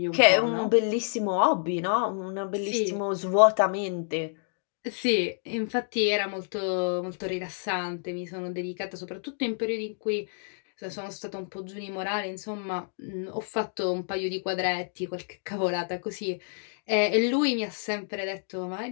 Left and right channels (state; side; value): silent; right; digital silence